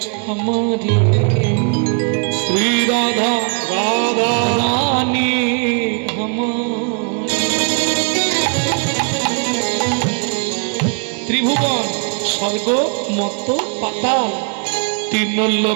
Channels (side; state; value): left; quieter; 39.6 dB